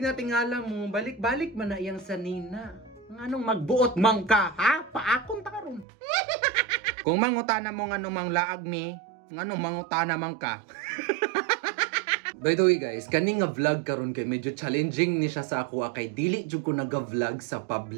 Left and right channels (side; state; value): left; drops out; at 5.9 s